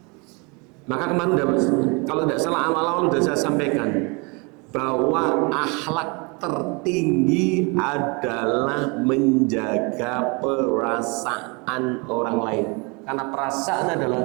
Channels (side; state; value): left; quieter; 30.4 dB